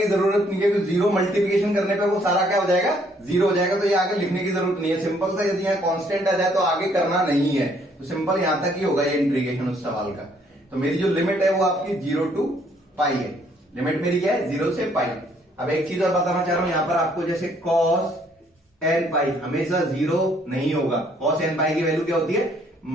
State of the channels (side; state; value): both; normal; correlation 0.65